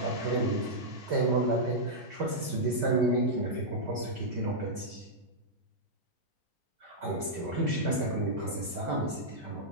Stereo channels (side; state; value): left; late; 3.2 ms